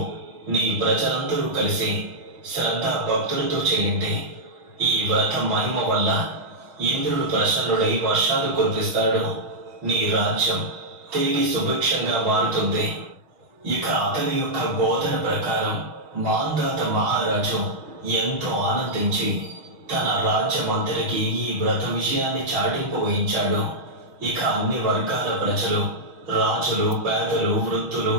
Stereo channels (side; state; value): left; late; 6.3 ms